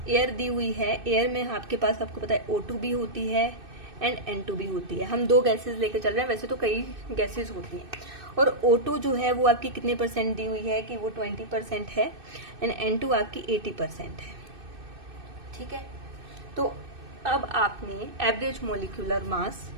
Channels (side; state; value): left; late; 2.6 ms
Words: एयर दी हुई है, एयर में आपके पास आपको पता है O2 भी होती है एंड N2 भी होती है। हम दो गैसेस लेके चल रहे हैं, वैसे तो कई गैसेस होती हैं। और O2 जो है वो आपकी कितने परसेंट दी हुई है कि वो 20% है एंड N2 आपकी 80% है। ठीक है, तो अब आपने average molecular mass